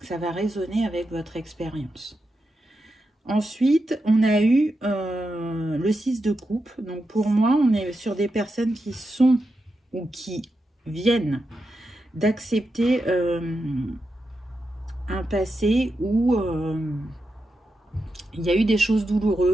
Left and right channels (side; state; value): both; normal; correlation 0.87